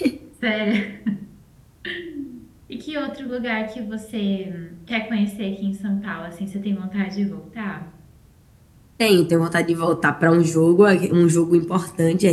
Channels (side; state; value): both; identical; correlation 1.00